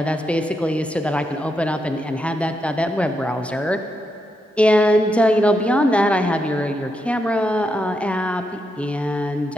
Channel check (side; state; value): both; normal; correlation 0.83